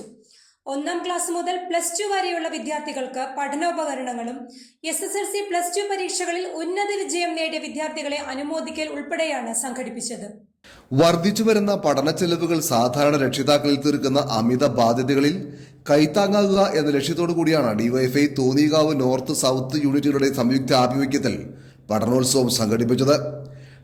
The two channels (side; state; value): both; identical; correlation 1.00